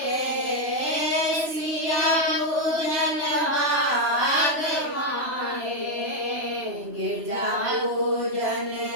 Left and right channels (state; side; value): late; left; 3.0 ms